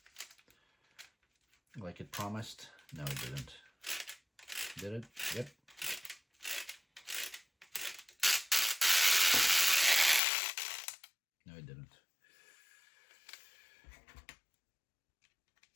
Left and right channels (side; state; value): right; drops out; at 10.2 s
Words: like it promised. No, it didn't. Did it? Yep. No, it didn't.